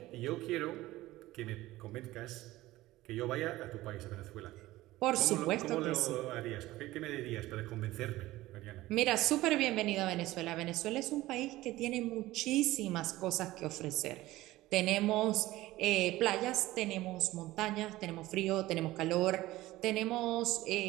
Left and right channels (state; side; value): quieter; left; 17.3 dB